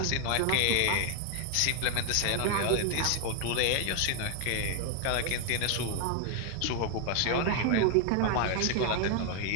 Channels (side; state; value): both; different; correlation 0.00